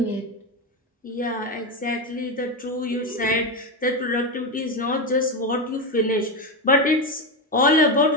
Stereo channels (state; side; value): normal; both; correlation 0.12